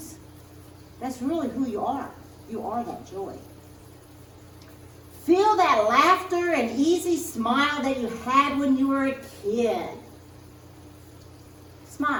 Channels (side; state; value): both; identical; correlation 1.00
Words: that's really who you are. You are that joy. Feel that laughter and easy smile that you had when you were a kid.